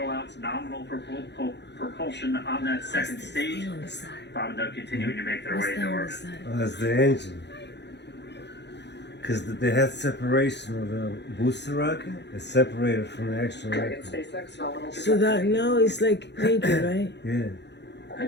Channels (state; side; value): late; right; 0.50 ms